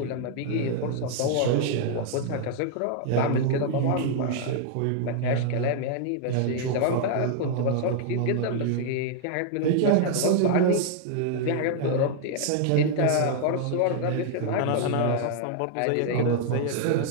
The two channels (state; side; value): different; both; correlation 0.00